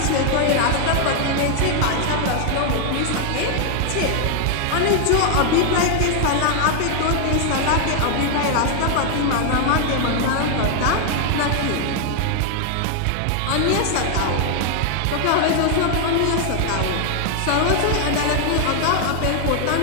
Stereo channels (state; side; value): different; both; correlation 0.00